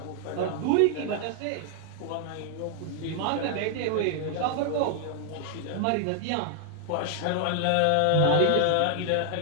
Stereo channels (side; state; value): both; different; correlation 0.00